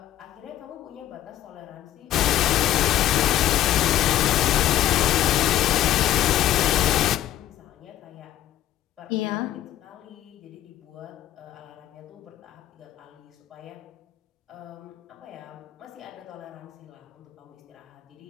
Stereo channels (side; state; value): right; quieter; 12.9 dB